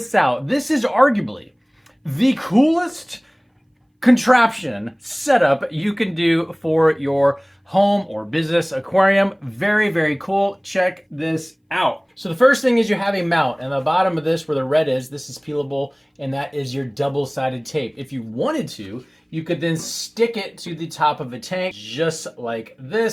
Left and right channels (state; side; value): identical; both; correlation 1.00